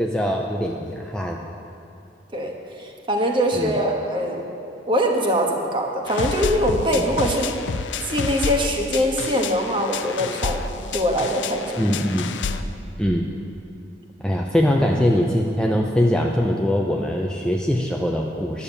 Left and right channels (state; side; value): normal; both; correlation 0.59